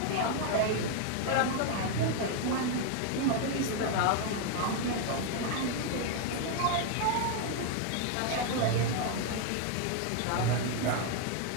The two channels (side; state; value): both; different; correlation 0.01